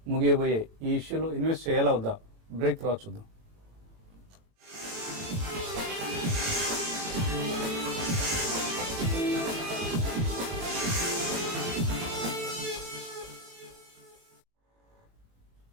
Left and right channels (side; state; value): left; late; 39 ms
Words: ముగియబోయే ఈ ఇష్యూలో ఇన్వెస్ట్ చేయాలా వద్దా? బ్రేక్ తర్వాత చూద్దాం.